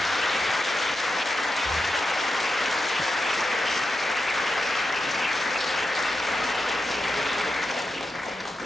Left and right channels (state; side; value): normal; both; correlation 0.88